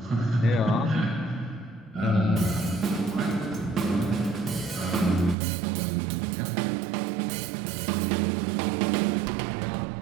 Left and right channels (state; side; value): drops out; left; at 5.4 s